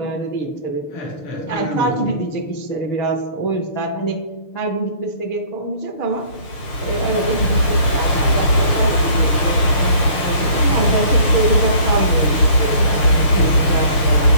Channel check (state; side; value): late; right; 6.7 ms